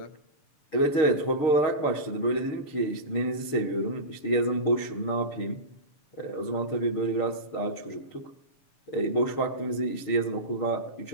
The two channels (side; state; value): right; late; 7.0 ms